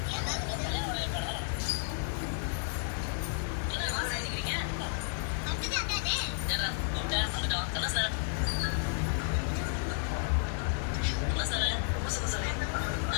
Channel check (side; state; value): right; silent; 56 dB below the other